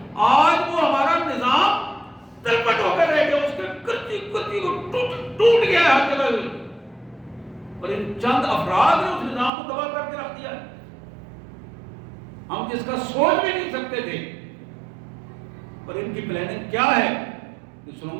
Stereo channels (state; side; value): drops out; left; at 9.5 s